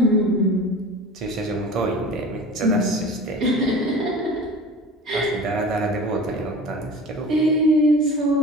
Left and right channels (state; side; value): normal; both; correlation 0.37